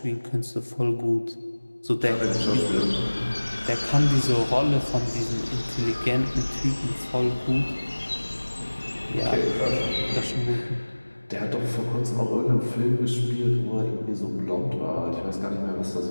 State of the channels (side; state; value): both; inverted; correlation -1.00